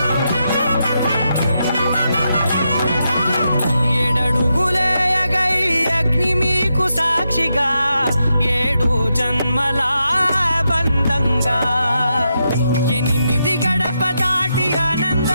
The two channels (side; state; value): both; inverted; correlation -0.84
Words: ఏడడుగులేయగై అగ్ని మీకు సాక్షిగా ఏడు జన్మల బంధంగా 8 గడప దాటి